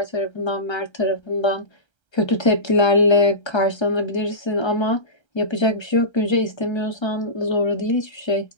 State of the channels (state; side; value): late; right; 1.3 ms